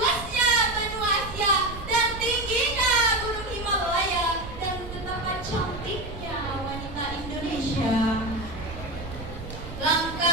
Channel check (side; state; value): right; noise; rumble, 11 dB below the sound